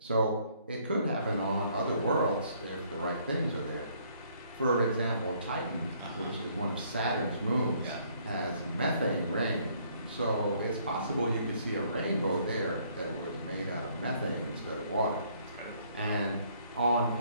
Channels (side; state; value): both; inverted; correlation -0.65